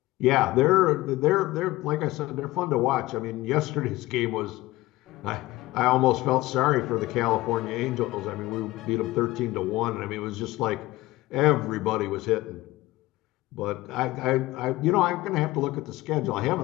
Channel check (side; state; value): right; quieter; 18.5 dB